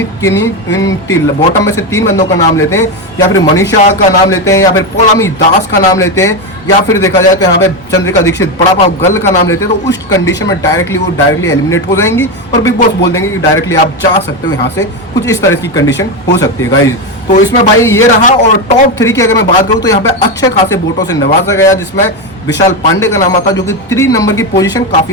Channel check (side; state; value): both; normal; correlation 0.12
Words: बॉटम में से 3 बंदों का नाम लेते हैं या फिर मनीषा का नाम लेते हैं या फिर पौलामी दास का नाम लेते हैं या फिर देखा जाए तो यहाँ पे चंद्रिका दीक्षित बड़ा पाव गर्ल का नाम लेते हैं तो उस कंडीशन में डायरेक्टली एलिमिनेट हो जाएंगी और बिग बॉस बोल देंगे कि डायरेक्टली आप जा सकते हो यहाँ से। कुछ इस तरह की कंडीशन हो सकती है गाइज। तो इसमें भाई ये रहा। और टॉप 3 की अगर मैं बात करूँ तो यहाँ पे अच्छे खासे वोटों से नवाजा गया जिसमें विशाल पांडे का नाम आता है जो कि 3 नंबर की पोजीशन